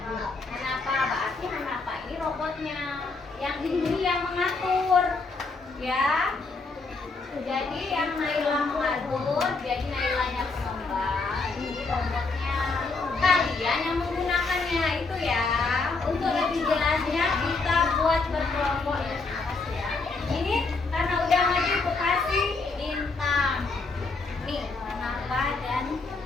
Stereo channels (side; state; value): right; quieter; 3.9 dB